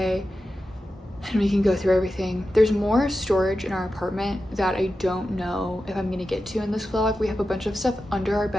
and we can go through everything. There's more storage in our apartment that I don't know if I'm gonna get to in this vlog. We have a bunch of stuff under our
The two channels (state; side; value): normal; both; correlation 0.92